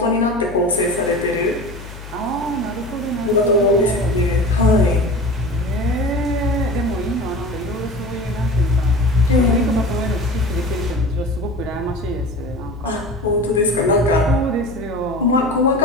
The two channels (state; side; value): noise; left; hum, 14 dB below the sound